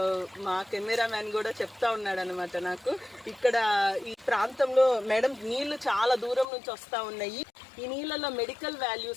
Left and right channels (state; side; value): drops out; right; at 6.5 s